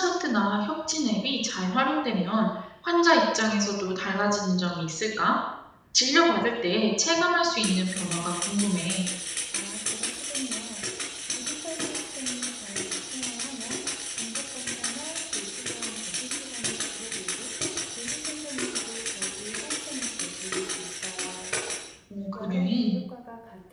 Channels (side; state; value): both; identical; correlation 1.00